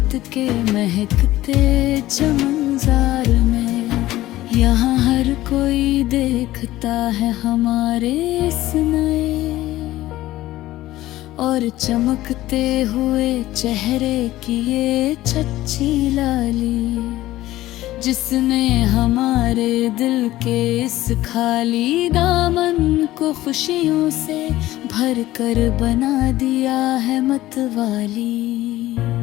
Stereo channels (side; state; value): right; quieter; 15.9 dB